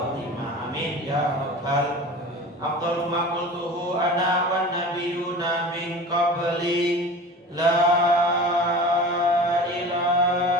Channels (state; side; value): normal; both; correlation 0.36